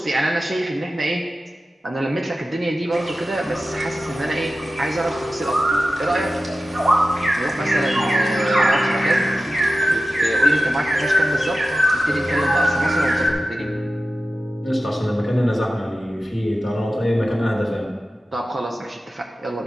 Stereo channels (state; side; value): normal; both; correlation 0.94